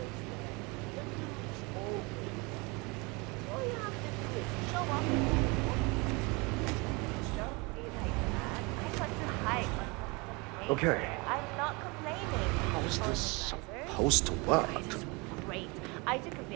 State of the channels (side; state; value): left; quieter; 27.6 dB